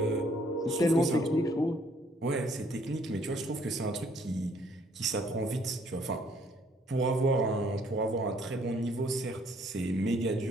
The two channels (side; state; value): both; normal; correlation 0.64